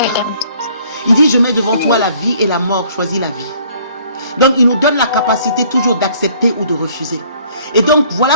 Il dit, je mets devant toi la vie et la mort, choisis la vie. Donc il nous donne la capacité toujours d'accepter ou de refuser. Et donc voilà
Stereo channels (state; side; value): inverted; both; correlation -0.59